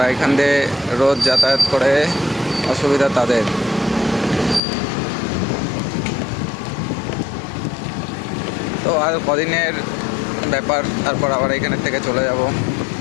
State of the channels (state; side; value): drops out; right; at 4.6 s